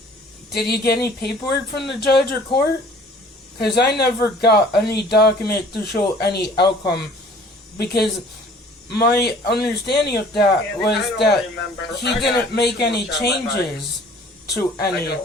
Did you get any paperwork from the judge or court? Because I never got any document to show any outcome. Because my understanding of that was that he didn't make any changes to any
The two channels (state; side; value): normal; both; correlation 0.52